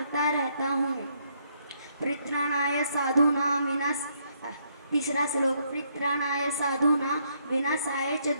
रहता हूँ। परित्राणाय साधूनां विनाश। तीसरा श्लोक, परित्राणाय साधूनां विनाशाय च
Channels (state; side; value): inverted; both; correlation -0.72